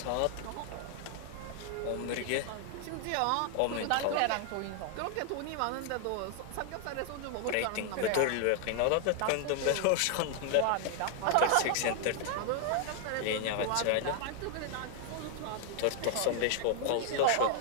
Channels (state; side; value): different; both; correlation 0.00